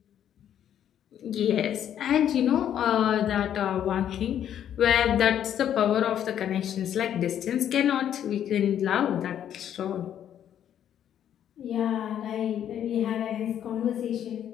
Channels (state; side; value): quieter; right; 10.0 dB